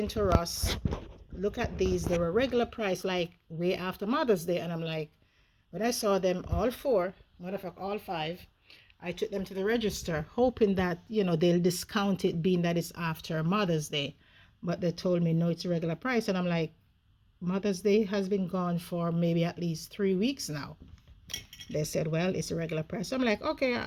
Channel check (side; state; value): both; identical; correlation 1.00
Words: Ross. Look at these. They were regular price, like way after Mother's Day, and I'm like, when I saw them all 4, matter of fact all 5, I took them to the register hoping that, you know, they'll discount it being that it's after Mother's Day. But they told me no, it's a regular price, and I'm like, Mother's Day has been gone for maybe at least 3 weeks now. They said, well, it's a regular price. So I'm like, okay,